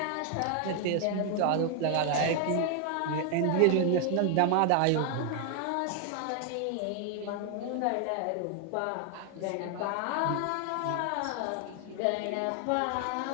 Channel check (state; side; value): different; both; correlation 0.00